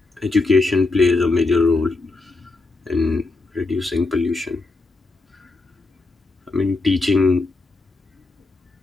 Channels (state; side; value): quieter; right; 3.4 dB